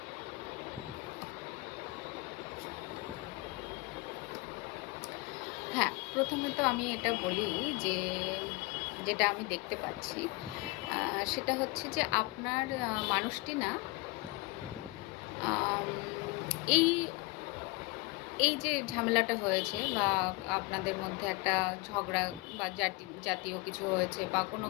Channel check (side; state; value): right; quieter; 24.0 dB